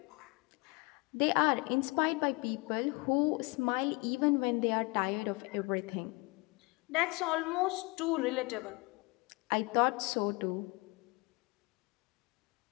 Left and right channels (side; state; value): right; quieter; 26.7 dB